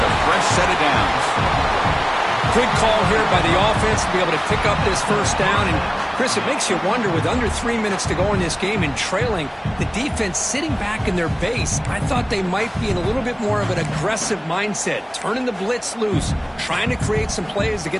a fresh set of downs. Good call here by the offense to be able to pick up this first down. And, Chris, it makes you wonder, with under 3 minutes to go in this game and trailing, the defense sitting back in their base. I thought they might be in a little bit more of an aggressive mindset, turning the blitz loose, trying to create some plays to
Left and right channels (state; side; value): identical; both; correlation 1.00